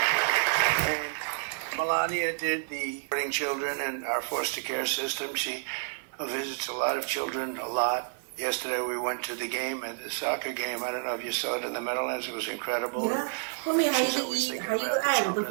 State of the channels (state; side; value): silent; left; digital silence